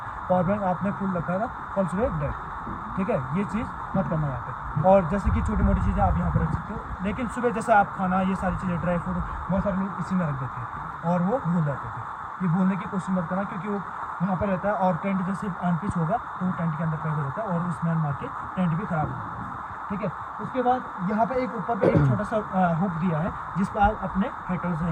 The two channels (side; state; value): both; identical; correlation 1.00